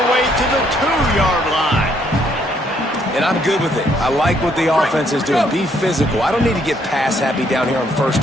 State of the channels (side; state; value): both; normal; correlation 0.69